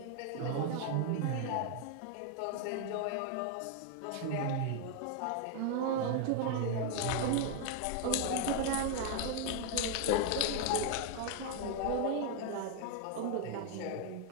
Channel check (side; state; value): both; different; correlation 0.00